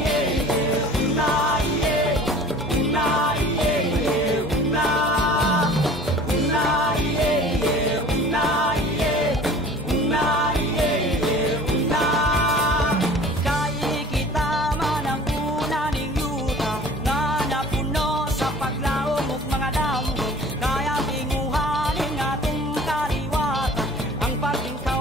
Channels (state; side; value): normal; both; correlation 0.46